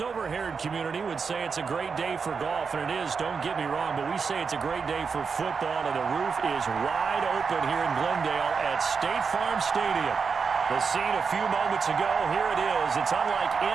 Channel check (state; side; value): quieter; left; 5.5 dB